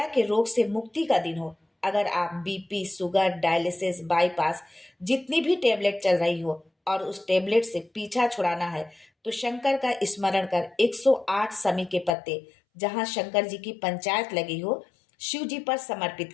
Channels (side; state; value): right; drops out; at 12.1 s